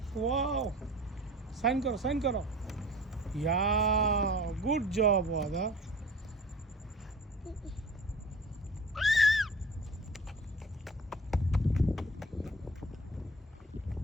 Wow. সাইন করো, সাইন করো। Yeah, good job, Wada.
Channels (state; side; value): normal; both; correlation 0.42